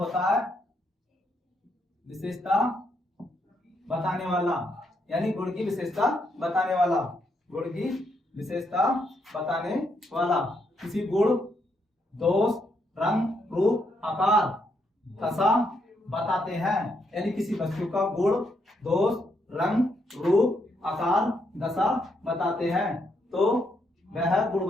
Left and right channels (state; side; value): normal; both; correlation 0.77